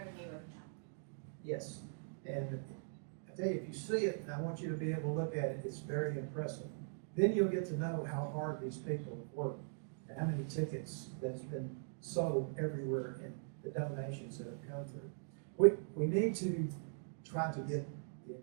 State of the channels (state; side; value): silent; left; digital silence